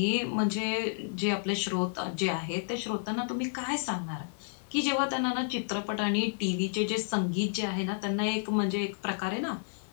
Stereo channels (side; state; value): right; silent; digital silence